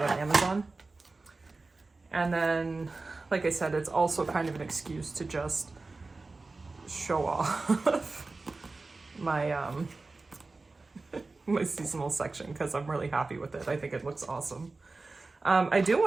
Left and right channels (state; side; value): quieter; left; 3.6 dB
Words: on Amazon. And then, like I said, it's also kind of an excuse to just show off my my seasonal section, because I'm really happy with it. I think it looks awesome. I do